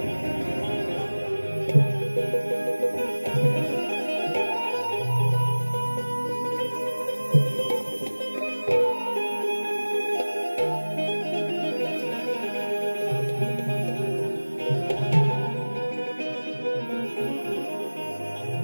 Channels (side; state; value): both; inverted; correlation -1.00